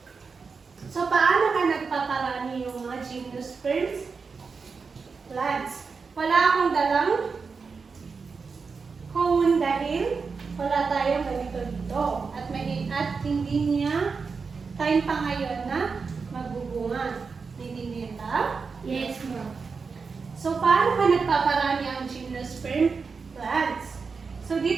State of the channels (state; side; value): quieter; left; 5.0 dB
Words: So, paano ka nagpaparami yung mga gymnosperm plants? Wala akong dalang cone dahil wala tayong ganito dito. At hindi niya time pa ngayon na magbubunga. Naintindihan ba? Yes, ma'am. So, paano ka nagpaparami ang gymnosperm plants? So,